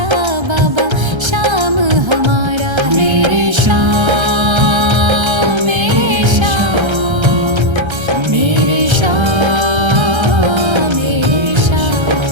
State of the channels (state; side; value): late; left; 1.3 ms